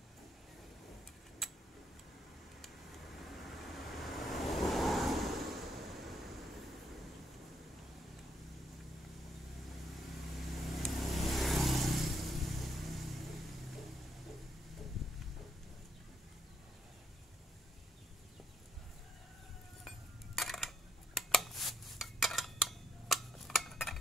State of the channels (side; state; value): both; normal; correlation 0.74